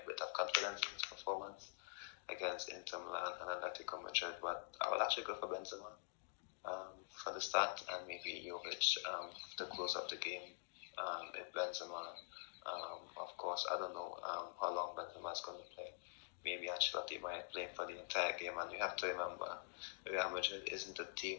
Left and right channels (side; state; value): right; silent; digital silence